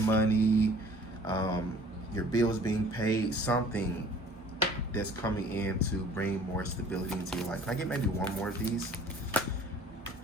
your bills being paid, something that's coming in to bring more stability into your life. Can I get maybe one more of these?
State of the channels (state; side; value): normal; both; correlation 0.50